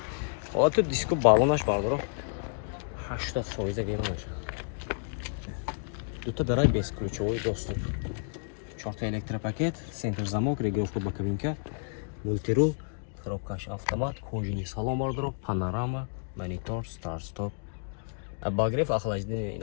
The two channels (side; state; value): right; silent; digital silence